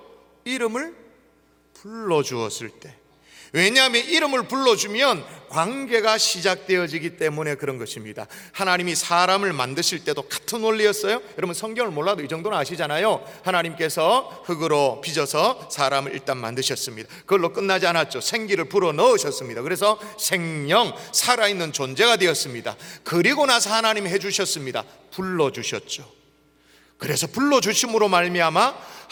이름을 불러주었을 때. 왜냐하면 이름을 불러주면 관계가 시작되어지기 때문에 그런 것입니다. 하나님이 사람을 만드실 때도 같은 원리였어요. 여러분, 성경을 몰라도 이 정도는 아시잖아요. 하나님께서 흙으로 빚어서 사람을 일단 만드셨습니다. 그걸로 끝나지 않았죠. 생기를 불어 넣으셨습니다. 그래서 생명, 살아있는 존재가 되었습니다. 그리고 나서 하나님이 해주셨습니다. 불러주셨죠. 그래서 불러주심으로 말미암아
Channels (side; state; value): both; identical; correlation 1.00